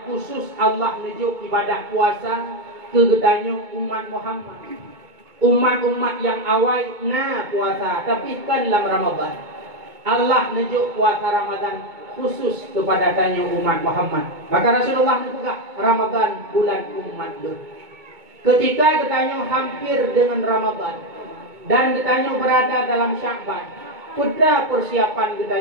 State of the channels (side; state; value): left; late; 2.2 ms